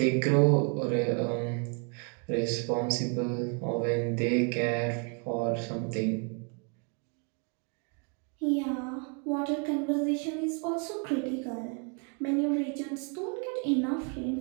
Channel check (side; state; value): left; quieter; 36.6 dB